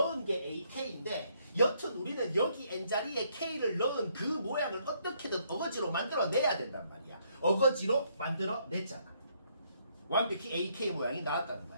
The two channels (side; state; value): both; inverted; correlation -0.71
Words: 게 ak인데 여튼 우리는 여기 n자리에 k를 넣은 그 모양을 어떻게든 어거지로 만들어내야 된단 말이야. 어거지로 만들어냈잖아. 완벽히 AK 모양이 나왔다는